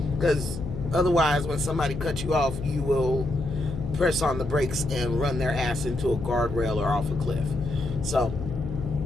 Because otherwise, when somebody cuts you off, you will press on the brakes and run their ass into a guardrail or off a cliff. So,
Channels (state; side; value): noise; left; hum, 8 dB below the sound